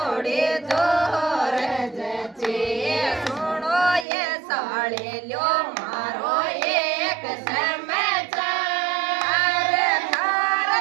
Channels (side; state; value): left; drops out; at 4.0 s